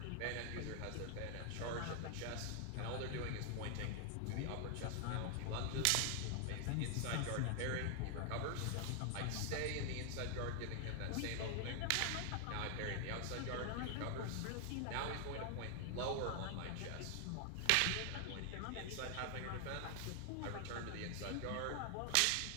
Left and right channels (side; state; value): both; different; correlation 0.00